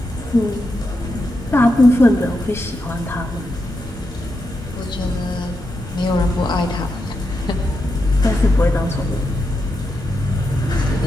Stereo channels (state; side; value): normal; both; correlation 0.85